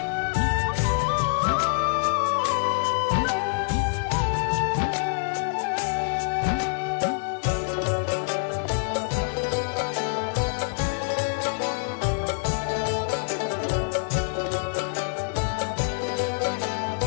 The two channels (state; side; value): silent; right; digital silence